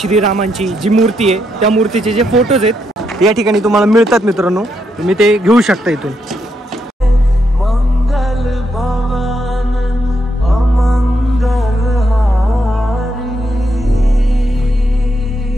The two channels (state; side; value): normal; both; correlation 0.79